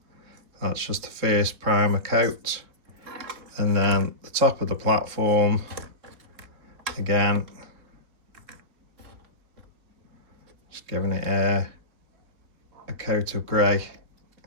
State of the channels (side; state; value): left; late; 3.7 ms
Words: That's just the first primer coat. And then the top of the platform, again, just giving it a coat of grey.